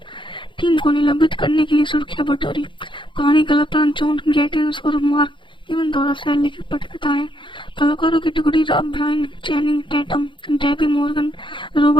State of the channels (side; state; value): right; late; 0.24 ms